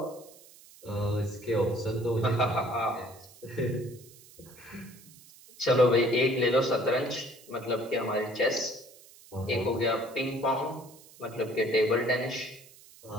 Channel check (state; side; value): noise; right; hiss, 22 dB below the sound